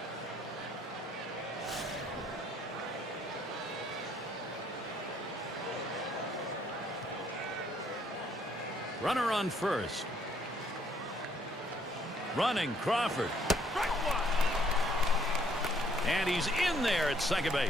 Runner on first. Running Crawford. And he's in there at second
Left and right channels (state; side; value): normal; both; correlation 0.66